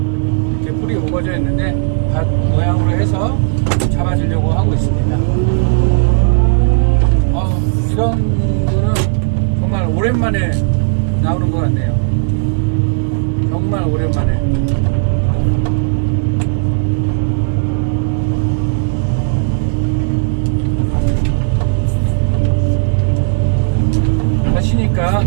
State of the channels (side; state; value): left; silent; digital silence